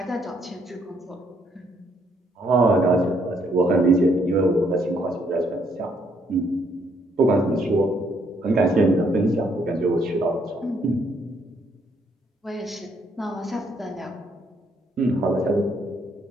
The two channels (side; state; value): both; normal; correlation 0.71